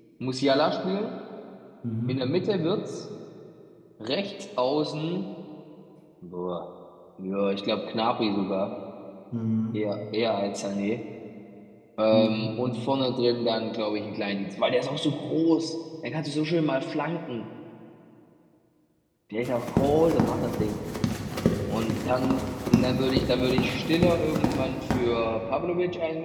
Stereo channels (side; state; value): both; identical; correlation 1.00